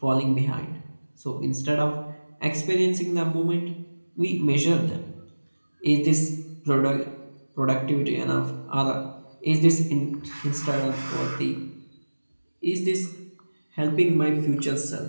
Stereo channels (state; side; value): inverted; both; correlation -1.00